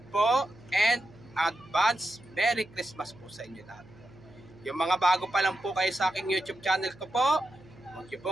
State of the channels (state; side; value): noise; right; hum, 23 dB below the sound